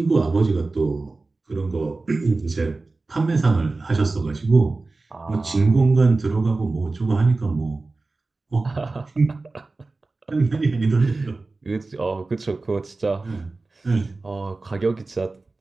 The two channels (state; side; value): quieter; left; 3.5 dB